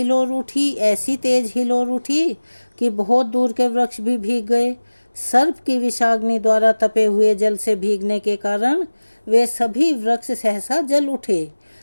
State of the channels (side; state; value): both; inverted; correlation -1.00